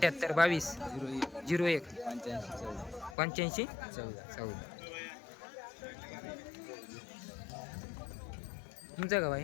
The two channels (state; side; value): drops out; right; at 3.2 s